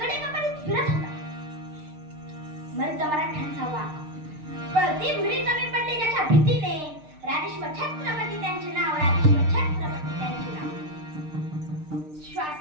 फिरत होता. मर्द मराठ्यांचा वाघ, पळती भिडी कमी पडली ज्याच्या भीतीने, राजेश्वर छत्रपती त्यांचे नाव, राजेश्वर छत्रपती त्यांचे नाव.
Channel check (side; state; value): left; late; 6.6 ms